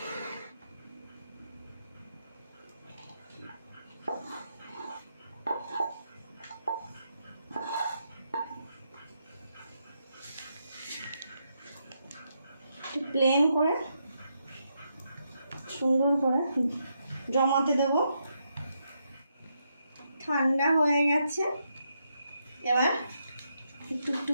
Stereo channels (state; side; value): inverted; both; correlation -0.81